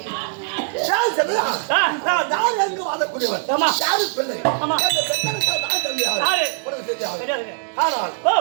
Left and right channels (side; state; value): left; silent; 58 dB below the other